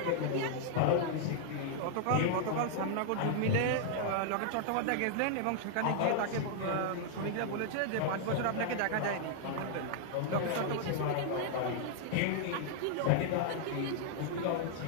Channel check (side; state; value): both; different; correlation -0.01